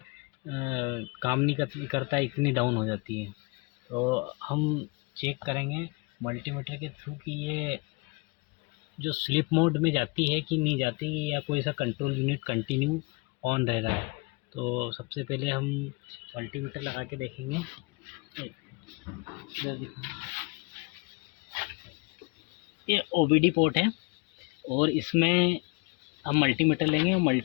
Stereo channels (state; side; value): quieter; right; 29.2 dB